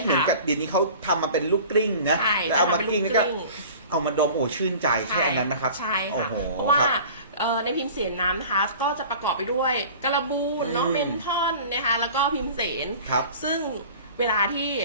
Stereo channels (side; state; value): both; inverted; correlation -0.42